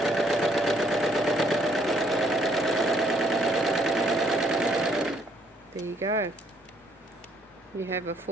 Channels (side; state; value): both; normal; correlation 0.67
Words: There you go. You have a